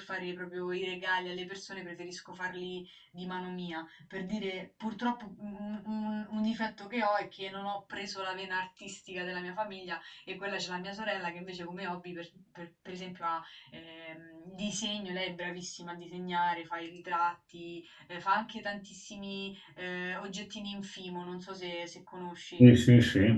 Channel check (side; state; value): both; identical; correlation 1.00